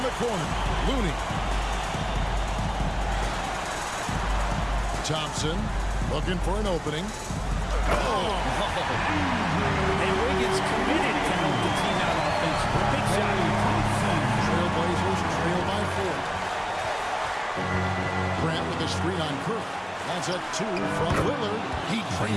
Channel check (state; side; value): identical; both; correlation 1.00